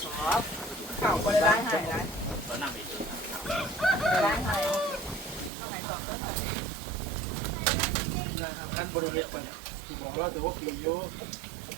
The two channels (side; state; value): left; drops out; at 5.5 s